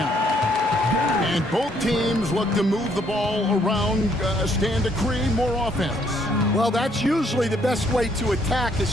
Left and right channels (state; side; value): normal; both; correlation 0.68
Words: And both teams look to move the ball around, stand to create more offense. Well, that's usually the best way to attack,